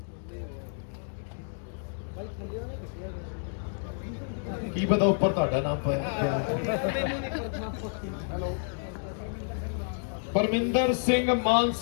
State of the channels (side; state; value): right; silent; digital silence